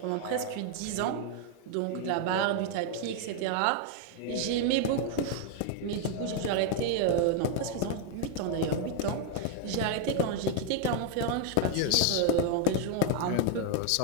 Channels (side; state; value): both; different; correlation 0.00